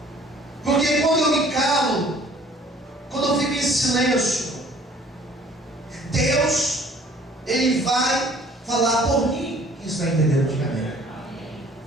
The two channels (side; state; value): both; normal; correlation 0.54